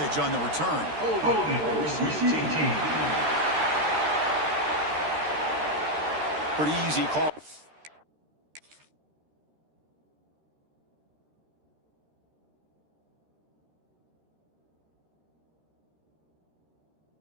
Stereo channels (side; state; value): left; late; 13 ms